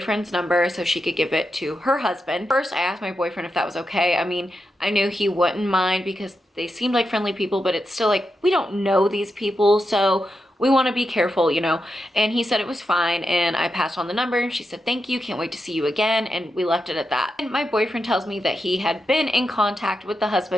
number so she could give it to her husband. First, I asked my boyfriend if that was okay. I mean, I knew he wouldn't mind because they seemed like friendly people, but it's still like, we don't know these people, so we want to be careful, you know. And he said it was fine, and I passed on the number, and she said, thank you, can't wait to see you again, and we left it at that. And my boyfriend tells me that he had been in contact with the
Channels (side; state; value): both; normal; correlation 0.87